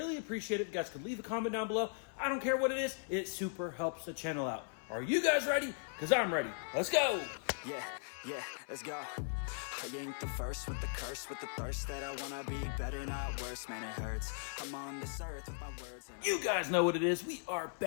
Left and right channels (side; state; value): right; silent; 52 dB below the other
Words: appreciate it. If you guys could leave a comment down below. I don't care what it is, it super helps the channel out. Are you guys ready? Because I'm ready. Let's go. Yeah, let's go. I ain't the first with the curse, with the thirst that I wanna be better, not worse. Man, it hurts. I'm on this earth with my words. You guys know what it is. We are